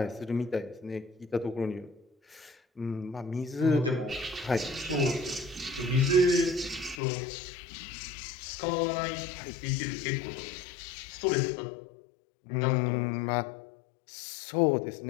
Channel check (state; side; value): drops out; right; at 7.0 s